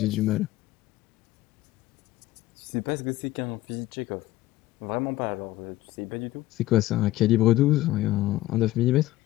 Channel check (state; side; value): quieter; right; 16.7 dB